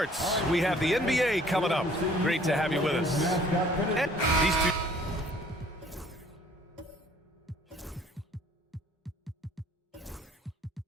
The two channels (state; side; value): normal; both; correlation 0.56